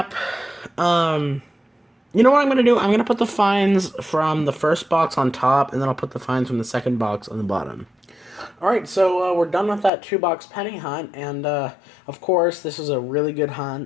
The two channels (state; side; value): drops out; right; at 9.9 s